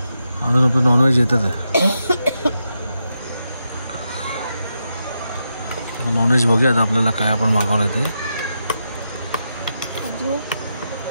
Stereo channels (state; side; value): inverted; both; correlation -0.85